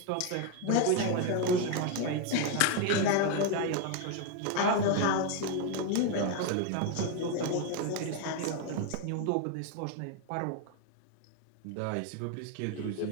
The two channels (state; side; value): different; both; correlation 0.01